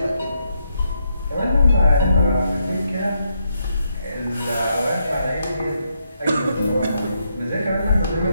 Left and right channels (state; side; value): inverted; both; correlation -0.79